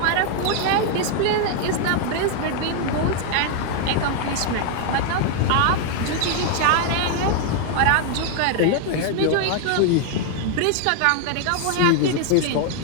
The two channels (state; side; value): different; both; correlation 0.00